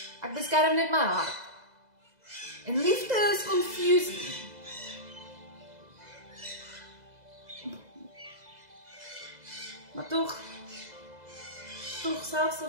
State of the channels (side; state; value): left; late; 2.0 ms